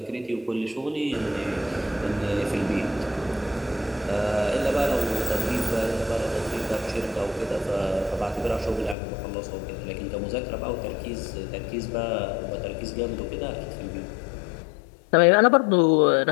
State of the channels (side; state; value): right; drops out; at 9.0 s